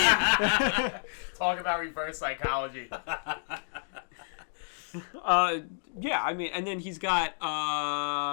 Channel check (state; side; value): silent; right; digital silence